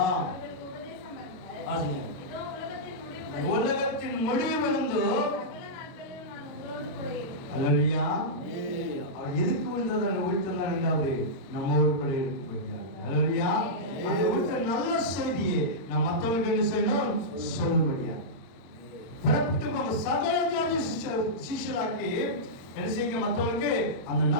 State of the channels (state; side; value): late; right; 22 ms